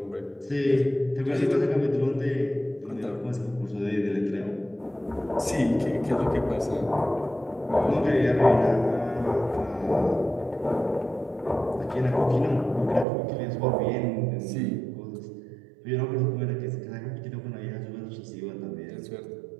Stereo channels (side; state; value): left; drops out; at 13.1 s